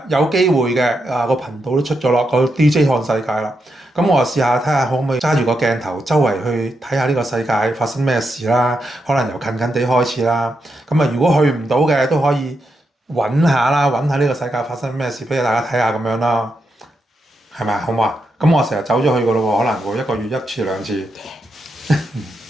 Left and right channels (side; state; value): both; normal; correlation 0.84